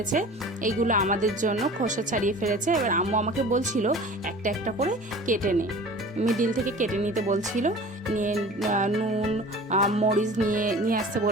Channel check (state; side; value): normal; both; correlation 0.41